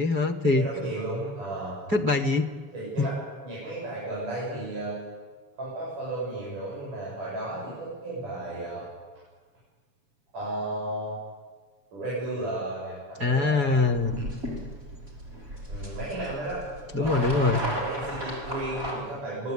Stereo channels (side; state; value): left; late; 7.1 ms